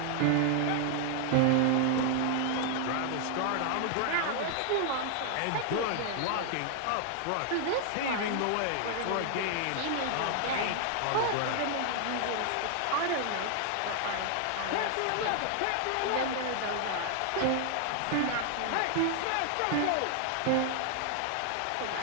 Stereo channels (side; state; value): both; different; correlation 0.00